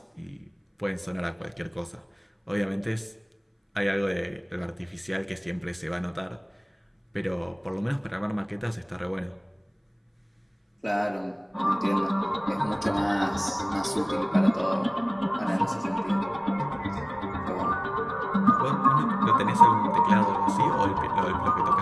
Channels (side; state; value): both; identical; correlation 1.00